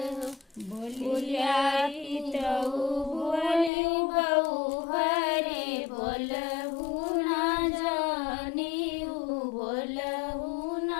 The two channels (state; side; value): drops out; right; at 3.7 s